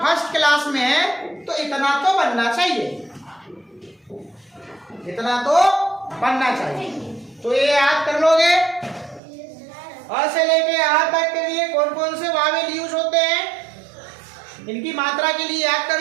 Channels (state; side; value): drops out; left; at 9.2 s